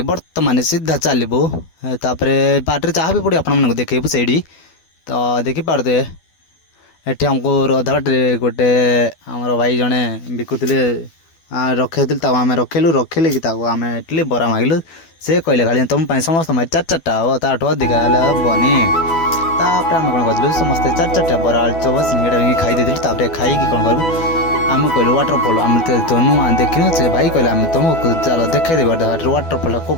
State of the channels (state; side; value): late; right; 12 ms